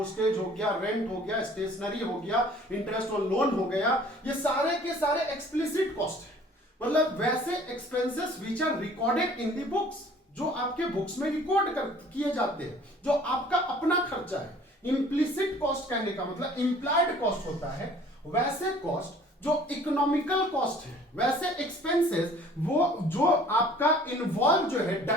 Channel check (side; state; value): both; normal; correlation 0.52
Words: हो गया, रेंट हो गया, स्टेशनरी हो गया, इंटरेस्ट ऑन लोन हो गया, ये सारे के सारे एक्सप्लिसिट कॉस्ट है। मतलब वैसे expenses which are recorded in the books, जो आपके बुक्स में रिकॉर्ड किए जाते हैं, जो आपका अपना खर्चा है। इम्प्लिसिट कॉस्ट कहने का मतलब इंप्लाइड कॉस्ट होता है। वैसे कॉस्ट जो इकोनॉमिकल कॉस्ट है, वैसे एक्सपेंसेस वो जो आपका इन्वॉल्व जो है